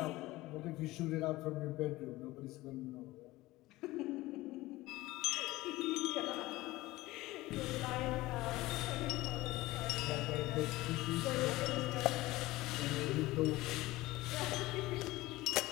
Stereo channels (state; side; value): quieter; right; 18.7 dB